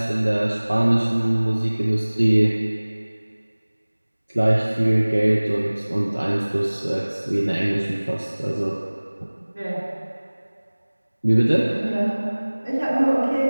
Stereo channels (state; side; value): inverted; both; correlation -1.00